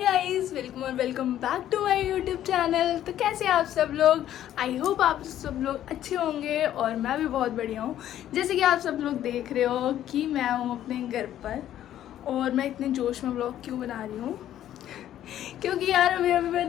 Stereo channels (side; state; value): right; quieter; 11.8 dB